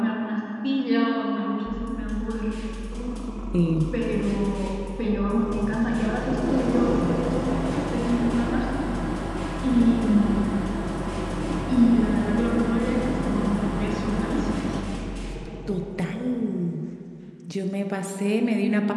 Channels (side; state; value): both; identical; correlation 1.00